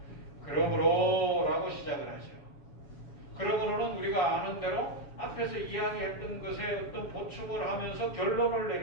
그러므로 라고 시작을 하죠. 그러므로는 우리가 아는 대로 앞에서 이야기했던 것에 어떤 보충을 하면서 결론을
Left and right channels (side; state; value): right; late; 7.1 ms